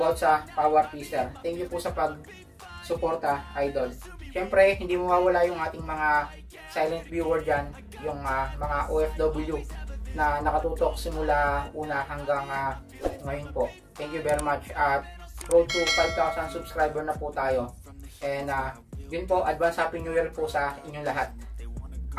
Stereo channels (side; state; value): both; identical; correlation 1.00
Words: sa Power Twister. Thank you po sa pag-suporta, idol. Siyempre, hindi mawawala yung ating mga silent viewer dyan, yung mga OFW na nakatutok simula una hanggang ngayon po. Thank you very much. At road to 5,000 subscriber na po tayo. And yun po, advance Happy New Year po sa inyong lahat.